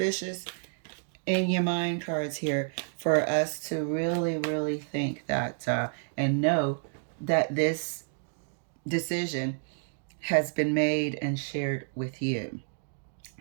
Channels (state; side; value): silent; left; digital silence